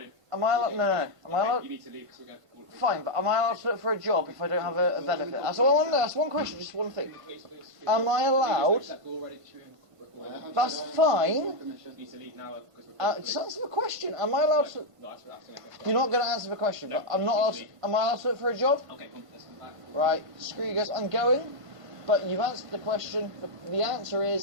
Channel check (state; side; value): late; left; 1.5 ms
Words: Am I allowed... No. Am I allowed... You need to leave because we're going to call. Fine, but am I allowed to look for a job if I don't have a benefit? That's all I want to know. That's one question, just one thing. Am I allowed... That's fine. You need to leave now because we're Just answer the question. Am I allowed to... You're not going to answer the question, but I'm not allowed to... Am I allowed to look for a job? Okay, cool. Let's come back. Right, screw you guys. I'm going, but you've answered the question. The answer